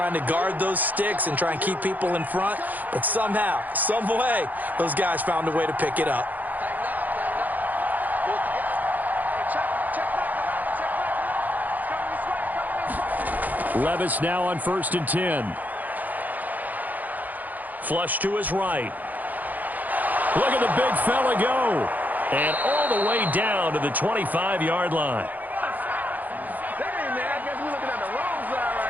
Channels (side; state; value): left; late; 0.082 ms